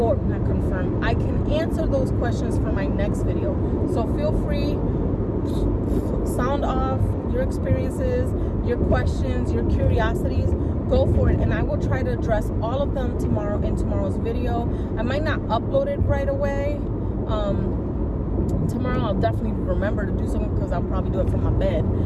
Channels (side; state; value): both; identical; correlation 1.00